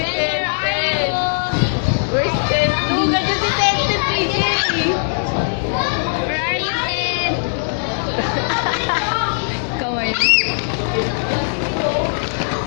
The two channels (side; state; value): right; silent; 67 dB below the other